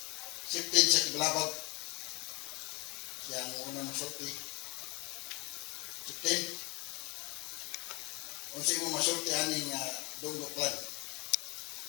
15 sa Tibalabag siya ang unang masulti 15 unsa mo masulti aning Dunggo clan.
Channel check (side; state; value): right; quieter; 26.4 dB